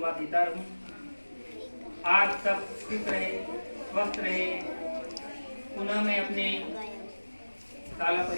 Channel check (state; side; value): inverted; both; correlation -1.00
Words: देता रहूँ। आज सब खुश रहे, स्वस्थ रहे। पुनः मैं अपने साला